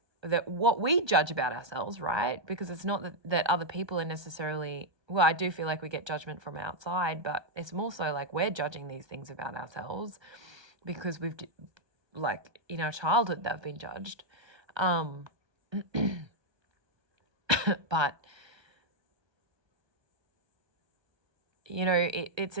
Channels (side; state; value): left; late; 1.3 ms